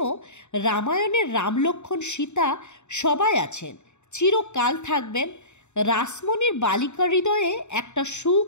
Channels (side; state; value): right; late; 0.83 ms